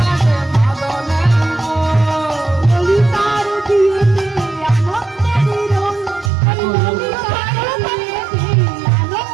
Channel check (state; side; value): drops out; left; at 6.3 s